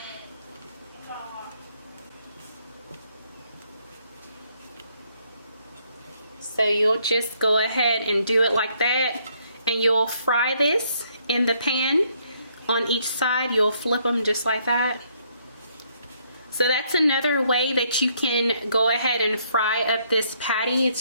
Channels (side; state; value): both; inverted; correlation -0.70